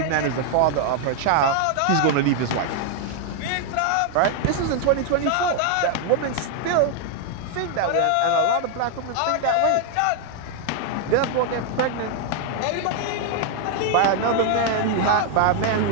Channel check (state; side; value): different; both; correlation 0.00